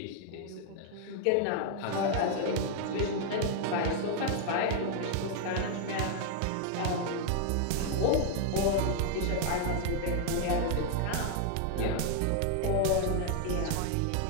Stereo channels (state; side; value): different; both; correlation 0.00